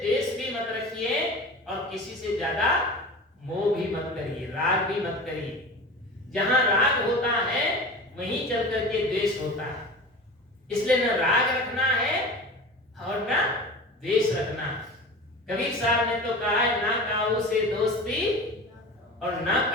भी मत रखिए और किसी से ज्यादा मोह भी मत करिए, राग भी मत करिए। जहां राग होता है वहीं चल करके द्वेष होता है। इसलिए न राग रखना है और न द्वेष रखना है। कबीर साहब ने तो कहा है, ना काऊ से दोस्ती और ना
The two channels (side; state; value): both; normal; correlation 0.34